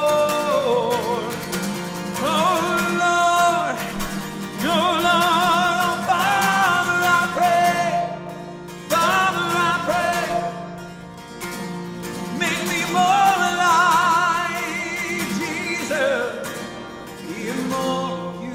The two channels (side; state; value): both; identical; correlation 1.00